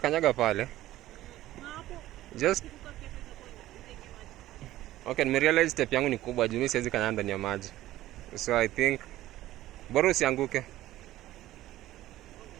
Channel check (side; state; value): left; quieter; 15.0 dB